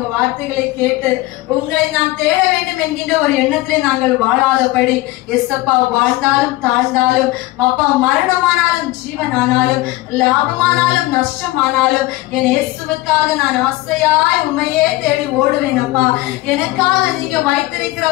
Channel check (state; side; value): quieter; right; 18.4 dB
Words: வார்த்தைகளை கேட்டு உங்களை நான் தேட வேண்டும் என்கின்ற ஒரு எண்ணத்திலே நாங்கள் வாழாதபடி, எஸ்அப்பா, வாழ்ந்தாலும் தாழ்ந்தாலும் அப்பா, மரணமானாலும் ஜீவனானாலும் லாபமானாலும் நஷ்டமானாலும் என் இயேசுவுக்காக நான் ஆசையாய் உண்மையே தேடி ஓடுவேன் அப்பா. எனக்காக நீங்க வைத்திருக்கிற